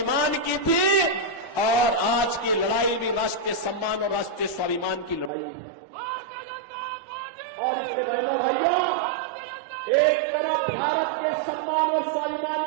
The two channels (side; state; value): left; drops out; at 5.3 s